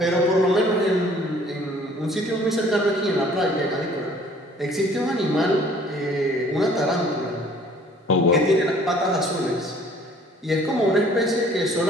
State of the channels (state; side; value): normal; both; correlation 0.55